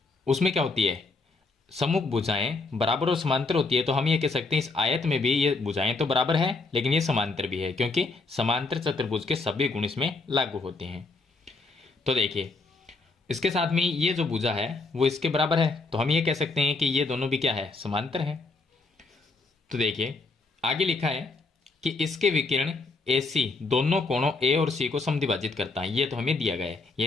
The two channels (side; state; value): right; quieter; 3.8 dB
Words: उसमें क्या होती है, सम्मुख भुजाएं बराबर और समांतर होती है। तो हम ये कह सकते हैं इस आयत में भी ये भुजाएं तो बराबर है लेकिन ये समांतर भी है, क्योंकि समांतर चतुर्भुज के सभी गुण इसमें लागू होते हैं। तो देखिए इसके साथ में ये जो भुजा है वो इसके बराबर है, तो हम ये कह सकते हैं कि ये दोनों भी क्या है, समांतर है। तो देखिए आगे लिखा है कि इसके विकिरण AC दोनों कोणों A और C को समद्विभाजित करता है। ये तो हमें दिया गया है,